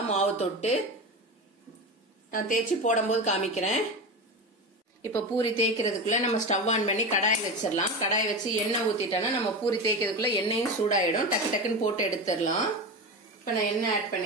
மாவு தொட்டு நான் தேய்ச்சி போடும் போது காமிக்கிறேன். இப்ப பூரி தேய்க்கிறதுக்குள்ள நம்ம ஸ்டவ் ஆன் பண்ணி கடாய் வச்சிடலாம். கடாய் வச்சு எண்ணெய் ஊத்திட்டோம்னா நம்ம பூரி தேய்க்கிறதுக்குள்ள எண்ணெயும் சூடாயிடும். டக்கு டக்குன்னு போட்டு எடுத்துடலாம். இப்ப நான் எண்ணெய் ஆட்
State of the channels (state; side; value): normal; both; correlation 0.23